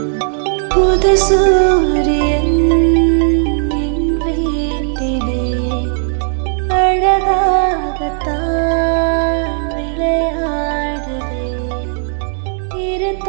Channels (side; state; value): left; silent; 69 dB below the other